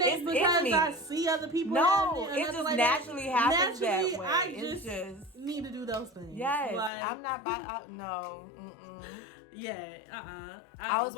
ain't because I see other people. No, it just like naturally happens that way. I just need to do those things. Yes, like, I'm not by. No. Yeah. I was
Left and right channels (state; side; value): drops out; right; at 6.9 s